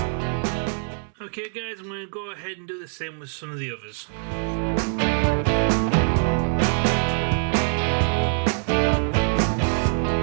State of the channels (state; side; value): silent; left; 60 dB below the other